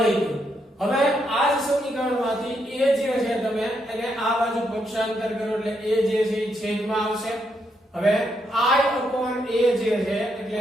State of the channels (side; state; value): both; normal; correlation 0.78